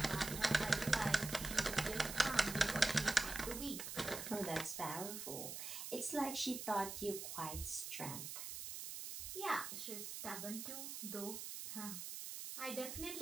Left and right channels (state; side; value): noise; right; hiss, 6 dB below the sound